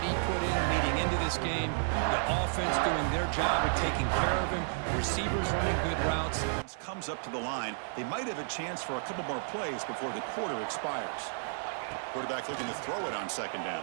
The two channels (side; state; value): left; silent; 56 dB below the other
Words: he put in leading into this game, the offense doing their job of taking care of him, receivers running good routes. Comes up to the line. They might have a chance for a couple more plays before the quarter expires. Quarterback looking to throw it on second down.